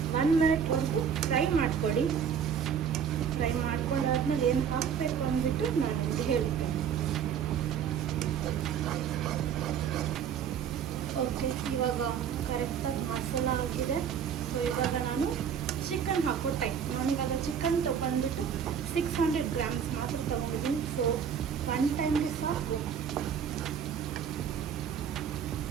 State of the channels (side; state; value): left; quieter; 7.7 dB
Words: 1 ಮಿನಿಟ್ವರೆಗೂ ಫ್ರೈ ಮಾಡ್ಕೊಳ್ಳಿ. ಫ್ರೈ ಮಾಡ್ಕೊಂಡಾದ್ಮೇಲೆ ಏನು ಹಾಕಬೇಕು ಅಂದ್ಬಿಟ್ಟು ನಾನು ನಿಮಗೆ ಹೇಳ್ತೇನೆ. ಓಕೆ, ಇವಾಗ ಕರೆಕ್ಟಾಗಿ ಮಸಾಲ ಆಗಿದೆ. ಸೊ ಇವಾಗ ನಾನು ಚಿಕನ್ ಹಾಕೋ ಟೈಮ್. ನಾನಿವಾಗ ಚಿಕನ್ ತೊಗೊಂಡ್ಬಿಟ್ಟು 600 ಗ್ರಾಮ್ಸ್ ಮಾತ್ರ ತೊಗೊಂಡಿದ್ದೀನಿ. ಸೊ 1 ಟೈಮ್ಗೆ ಸಾಕು.